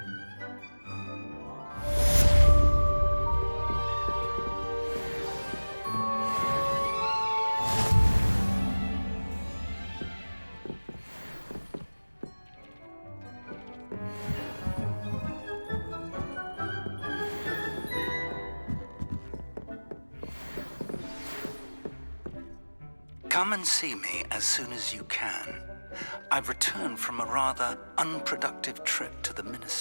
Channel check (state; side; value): inverted; both; correlation -1.00